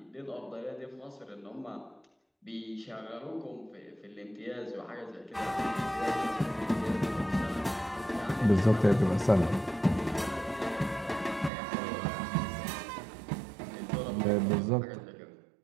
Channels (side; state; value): left; drops out; at 11.5 s